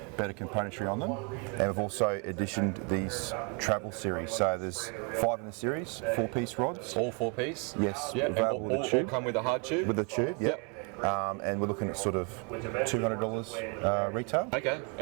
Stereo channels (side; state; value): left; quieter; 34.5 dB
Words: better componentry on them, and we've also additioned these travel series. So there's 5 in the series, 4-piece rods. All 4-piece? Yes. Yeah, and all come with a hard tube? With a tube, yep. and we're looking at sort of $200 retail. Okay,